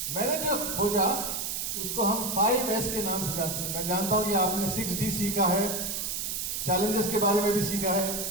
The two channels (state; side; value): noise; right; hiss, 2 dB below the sound